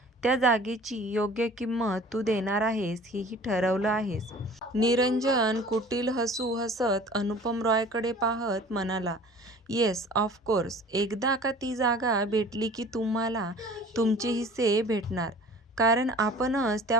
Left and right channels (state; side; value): normal; both; correlation 0.46